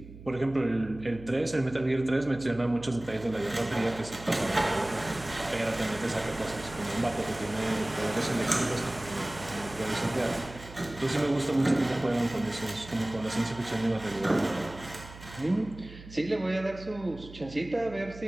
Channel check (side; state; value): right; noise; hum, 16 dB below the sound